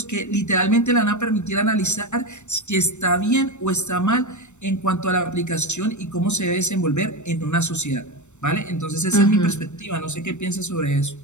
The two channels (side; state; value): right; late; 0.83 ms